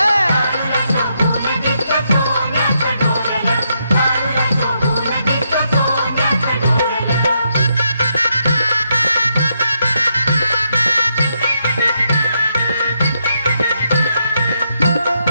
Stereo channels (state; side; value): inverted; both; correlation -0.79